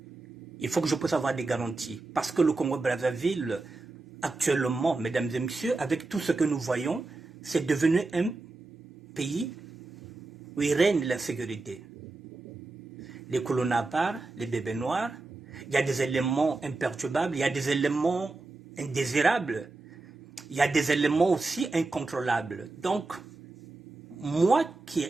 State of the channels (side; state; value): left; quieter; 3.5 dB